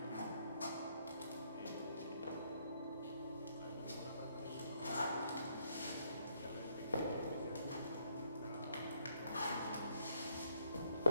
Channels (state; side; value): inverted; both; correlation -0.71